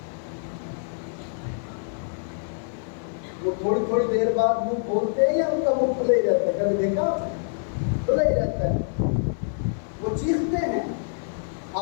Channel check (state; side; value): silent; right; 55 dB below the other